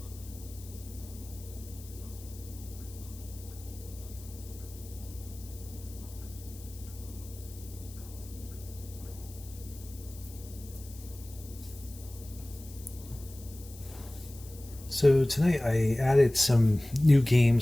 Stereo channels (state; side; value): noise; left; hiss, 18 dB below the sound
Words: So tonight I added some new